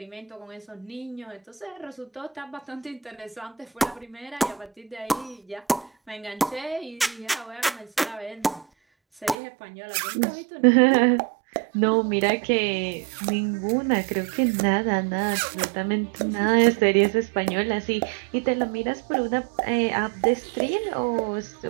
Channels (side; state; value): left; drops out; at 9.3 s